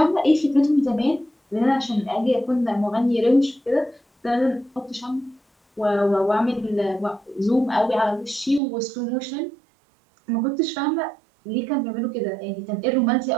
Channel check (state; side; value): drops out; left; at 8.6 s